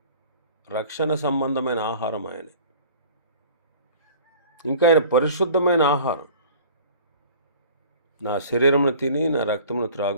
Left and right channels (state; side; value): inverted; both; correlation -0.46